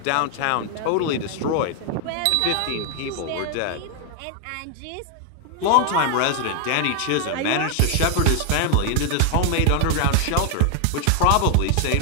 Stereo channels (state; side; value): different; both; correlation 0.00